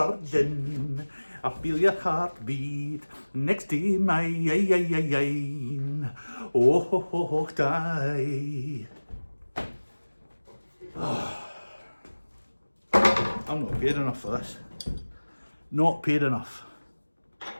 I feel your heartbeat next to mine. Oh, die. I'm not paid enough for this. Not paid enough.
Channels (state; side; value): inverted; both; correlation -1.00